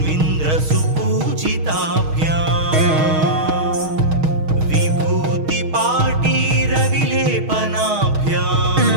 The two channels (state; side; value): late; left; 6.4 ms